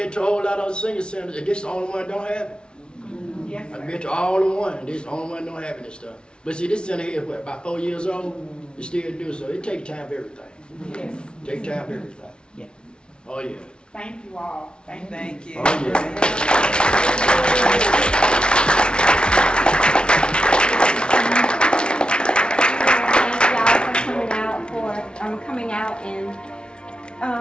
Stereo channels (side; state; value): right; late; 0.056 ms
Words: to a whole lot of senior centers, and this is the only one that don't have it. Yes, I've sir. been to all the one, and this is the only one that don't have this stuff. But see, this center here is what, about 4 years old? It still do, so it takes time for everything. Yes. Take time for everything. Yes. Oh, yeah. Thank you all. Thank you. Oh, yeah. Coming out